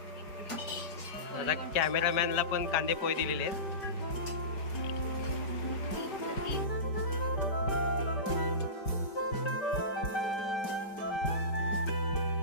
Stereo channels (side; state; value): right; late; 5.1 ms